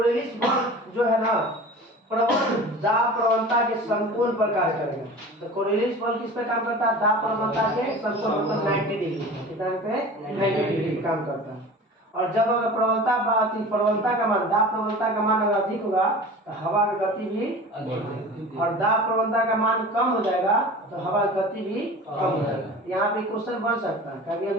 बल जो है ना प्रबल दाब प्रवणता के संपूर्ण पर कार्य करेगा। तो कोरियलिस बल किस पे काम करता है? दाब प्रवणता के संपूर्ण मतलब 90 डिग्री कितना पे 90 डिग्री काम करता है। और जब अगर प्रवणता का मान दाब प्रवणता का मान अगर अधिक होगा तो हवा की गति भी और दाब प्रवणता का मान कम हो जाएगा तो हवा की गति भी कम हो जाएगा। यहाँ पे क्वेश्चन बन सकता है, कभी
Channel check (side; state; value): both; normal; correlation 0.38